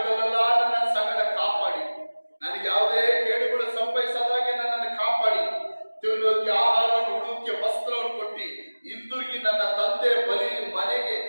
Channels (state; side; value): inverted; both; correlation -1.00